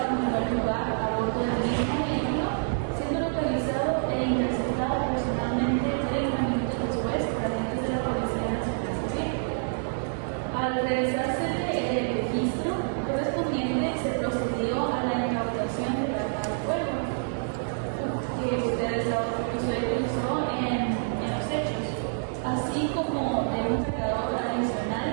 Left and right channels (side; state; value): left; silent; 60 dB below the other